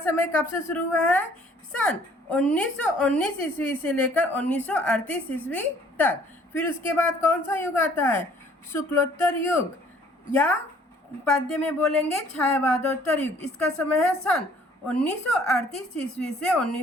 कब से शुरू हुआ है, सन 1919 ईस्वी से लेकर 1938 ईस्वी तक। फिर उसके बाद कौन सा युग आता है, शुक्लोत्तर युग, या पद्य में बोलेंगे छायावादोत्तर युग। इसका समय है सन 1938 ईस्वी से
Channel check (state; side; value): normal; both; correlation 0.57